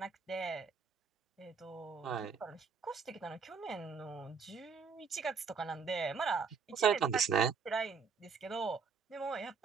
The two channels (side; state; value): left; quieter; 5.6 dB